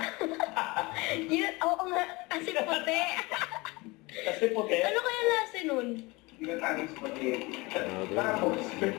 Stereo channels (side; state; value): right; quieter; 24.0 dB